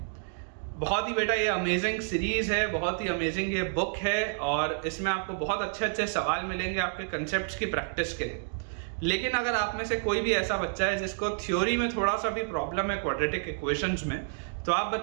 बहुत ही बेटा ये अमेजिंग सीरीज है, बहुत ही अमेजिंग ये बुक है और इसमें आपको बहुत अच्छे अच्छे सवाल मिलेंगे आपके कंसेप्ट्स की प्रैक्टिस के लिए। लेकिन अगर आप में से कोई भी ऐसा बच्चा है जिसको थ्योरी में थोड़ा सा भी प्रॉब्लम है क्वाड्रेटिक इक्वेशंस में, तो आप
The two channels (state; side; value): silent; left; digital silence